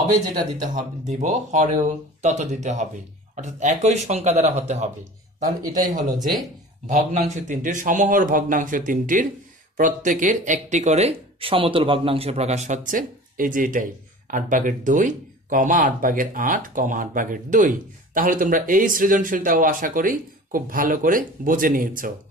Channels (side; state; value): both; normal; correlation 0.40